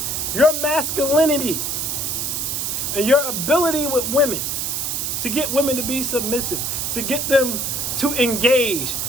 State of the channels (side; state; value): right; noise; hiss, 1 dB below the sound